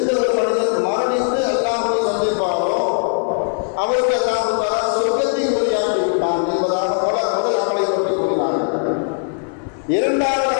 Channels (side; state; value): right; silent; 66 dB below the other